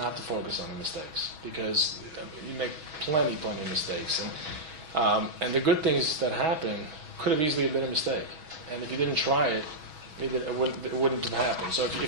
to focus on the mistakes because you make plenty of mistakes, and the good things that happen could have easily been a mistake. And if you didn't try it, it wouldn't have happened. So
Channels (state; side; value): late; left; 6.2 ms